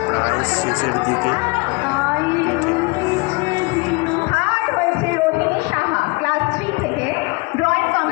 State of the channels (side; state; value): right; quieter; 27.1 dB